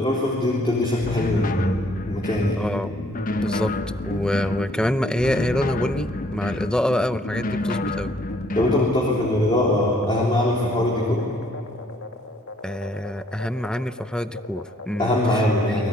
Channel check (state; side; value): normal; both; correlation 0.64